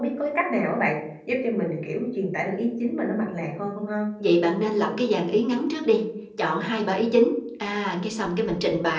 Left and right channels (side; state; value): both; identical; correlation 1.00